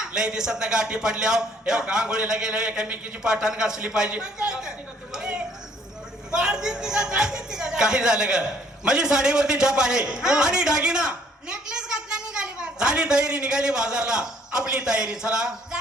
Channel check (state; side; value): normal; both; correlation 0.62